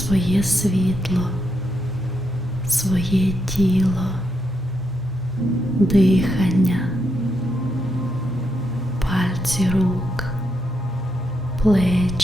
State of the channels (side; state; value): both; normal; correlation 0.81